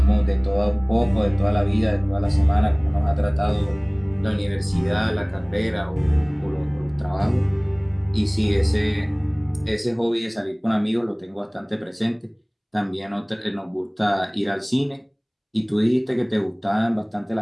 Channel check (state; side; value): identical; both; correlation 1.00